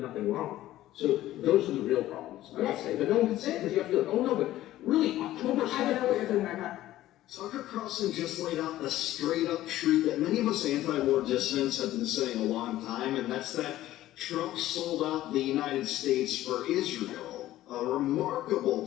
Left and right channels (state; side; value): quieter; right; 14.6 dB